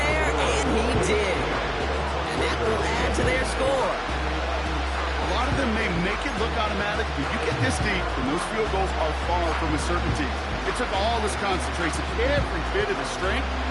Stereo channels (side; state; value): both; identical; correlation 1.00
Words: and he did. And that will add to their score. A lot of them may make it look automatic, but you get this deep, and those field goals are far from a certainty. It took all his concentration, every bit of his strength,